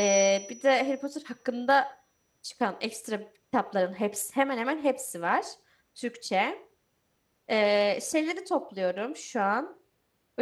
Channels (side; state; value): both; identical; correlation 1.00